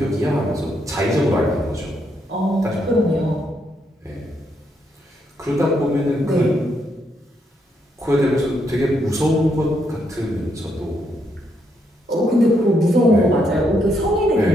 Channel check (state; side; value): normal; both; correlation 0.77